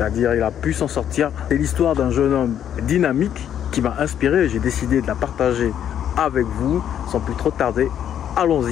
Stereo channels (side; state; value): right; quieter; 9.7 dB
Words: il a pu s'en sortir. C'est l'histoire d'un jeune homme dynamique qui m'a inspiré et j'ai décidé de la partager avec vous. Sans plus trop tarder,